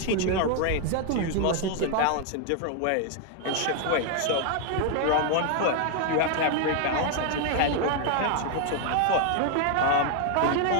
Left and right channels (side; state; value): both; different; correlation 0.00